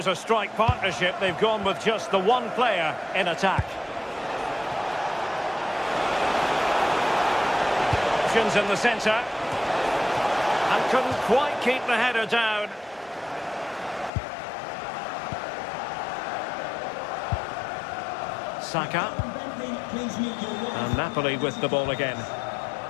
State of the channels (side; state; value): right; drops out; at 14.1 s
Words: a strike partnership, they've gone with just the one player in attack. Options in the centre. And couldn't quite keep the header down. Saka. And Napoli with the ball again.